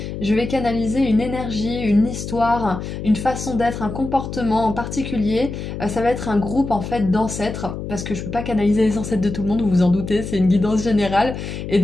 je vais canaliser une énergie, une histoire, une façon d'être, un comportement en particulier. Ça va être un groupe en fait d'ancêtres, parce que je ne peux pas canaliser les ancêtres de tout le monde, vous vous en doutez, c'est une guidance générale. Et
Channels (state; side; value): noise; left; hum, 7 dB below the sound